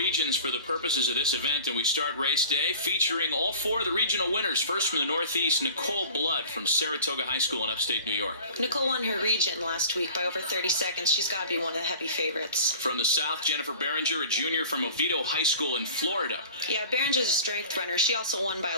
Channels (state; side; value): inverted; both; correlation -0.43